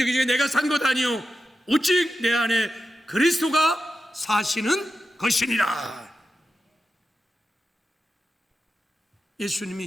이제 내가 산 것 아니요 오직 내 안에 그리스도가 사시는 것이니라.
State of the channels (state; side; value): normal; both; correlation 0.90